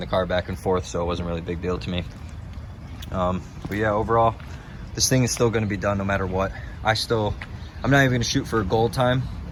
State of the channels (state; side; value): identical; both; correlation 1.00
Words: car back and forth, so it wasn't really a big deal to me. But yeah, overall, this thing is still going to be done no matter what. I'm not even going to shoot for a goal time,